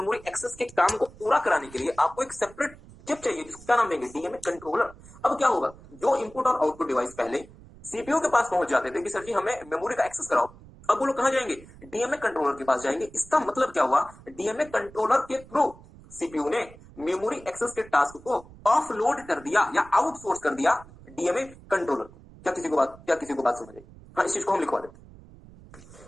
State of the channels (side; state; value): right; noise; rumble, 21 dB below the sound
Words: access के काम को पूरा कराने के लिए आपको एक सेपरेट चिप चाहिए जिसको क्या नाम देंगे? DMA controller. अब क्या होगा, जो इनपुट और आउटपुट डिवाइस पहले सीपीयू के पास पहुंच जाते थे कि सर जी हमें मेमोरी का एक्सेस कराओ, अब वो लोग कहां जाएंगे? डीएमए कंट्रोलर के पास जाएंगे। इसका मतलब क्या हुआ? डीएमए कंट्रोलर के थ्रू सीपीयू ने मेमोरी एक्सेस के टास्क को ऑफलोड कर दिया या आउटसोर्स कर दिया डीएमए कंट्रोलर को। क्या किसी को बात समझ आई? हाँ, इस चीज को हम लिखवा